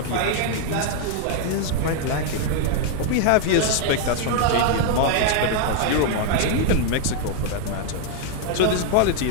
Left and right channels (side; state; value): both; different; correlation 0.00